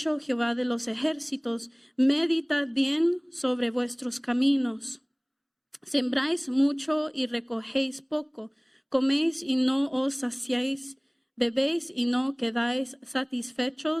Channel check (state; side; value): identical; both; correlation 1.00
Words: Jehová de los ejércitos, meditad bien sobre vuestros caminos. Sembráis mucho y recogéis poco, coméis y no os saciáis, bebéis y no quedáis